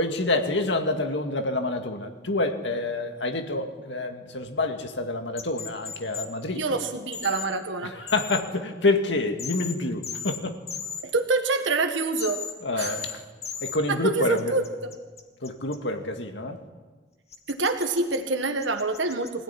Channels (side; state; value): both; normal; correlation 0.02